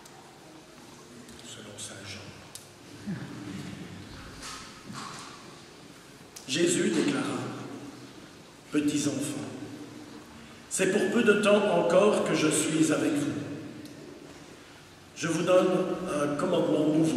Selon saint Jean. Jésus déclara: petits enfants, c'est pour peu de temps encore que je suis avec vous. Je vous donne un commandement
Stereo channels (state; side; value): identical; both; correlation 1.00